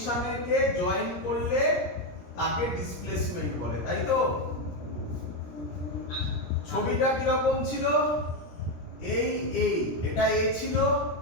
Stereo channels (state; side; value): late; right; 17 ms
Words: জয়েন করলে তাকে ডিসপ্লেসমেন্ট বলে, তাই তো? ছবিটা কি রকম ছিল? এই এটা a ছিল,